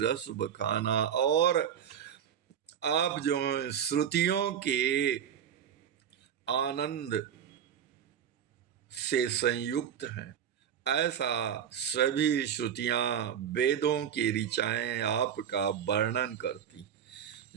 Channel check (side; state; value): left; quieter; 8.8 dB